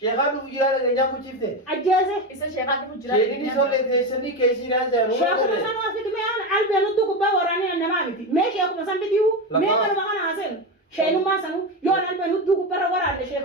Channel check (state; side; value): normal; both; correlation 0.16